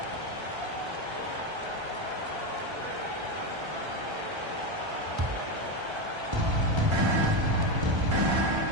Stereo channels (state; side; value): late; left; 1.3 ms